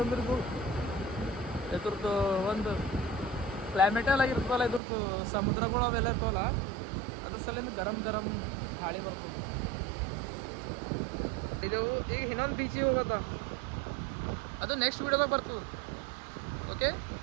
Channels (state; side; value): drops out; left; at 4.8 s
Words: ಇದ್ರದ್ದು ಒಂದು ಕ್ಲೈಮೇಟೆಲ್ಲ ಆಗಿರ್ತವಲ್ಲ ಇದ್ರದ್ದು ಸಮುದ್ರಗಳು ಅವೆಲ್ಲ ಇರ್ತವಲ್ಲ ಅದ್ರ ಸಲಿಂದ ಗರಂ ಗಾಳಿ ಬರ್ತದೆ ಇದು ಈಗ ಇನ್ನೊಂದು ಬೀಚಿಗೆ ಹೋಗತ್ತ ಅದು ನೆಕ್ಸ್ಟ್ ವೀಡಿಯೋದಾಗ ಬರ್ತದೆ ಓಕೆ